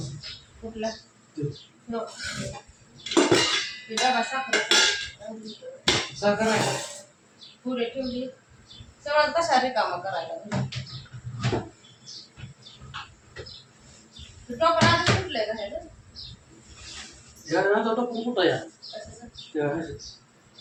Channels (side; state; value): both; identical; correlation 1.00